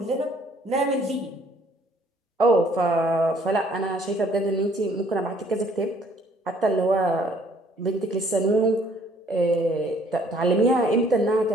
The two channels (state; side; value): normal; both; correlation 0.61